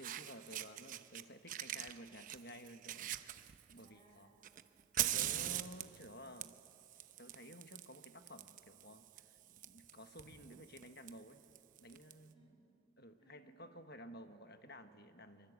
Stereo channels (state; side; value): quieter; left; 9.4 dB